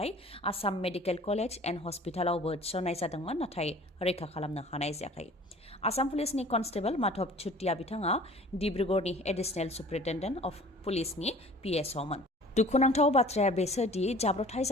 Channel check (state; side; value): normal; both; correlation 0.47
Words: आसाम मेडिकेल कलेज एन्ड हस्पिटालावबो थिसननाय जादोंमोन नाथाय रैखा खालामनो हानाय जायाखै आसाम पुलिसनि कनस्टेबल माधव चुटिया बिथाङा डिब्रुगड़नि एडिशनेल सुप्रिन्टेन्डेन्ट अफ पुलिसनि PSOमोन दुखुनांथाव बाथ्राया बेसोदि जाब्रबथाय